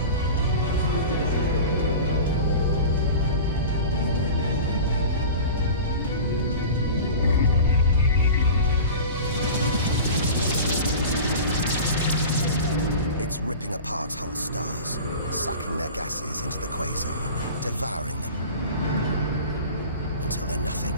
It's ripping apart whole stars, sucking their gases into the quasar, devouring them, until they're nothing,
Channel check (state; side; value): inverted; both; correlation -0.35